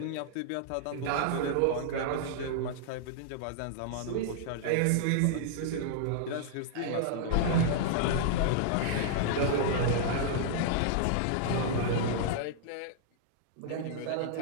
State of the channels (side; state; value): both; different; correlation -0.01